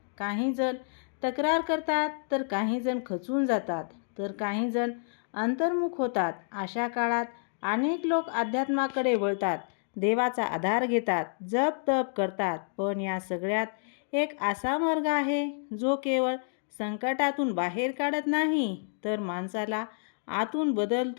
काही जण तक्रार करतात, तर काही जण खचून जातात, तर काही जण अंतर्मुख होतात. अशा काळात अनेक लोक अध्यात्माकडे वळतात, देवाचा आधार घेतात, जप तप करतात. पण या सगळ्यात एक असा मार्ग आहे जो केवळ संकटातून बाहेर काढत नाही, तर माणसाला आतून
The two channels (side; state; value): right; silent; digital silence